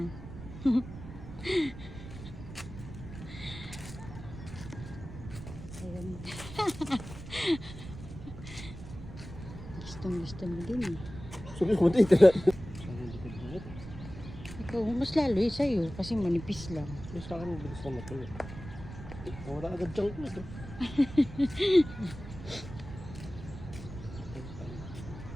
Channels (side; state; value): right; noise; rumble, 12 dB below the sound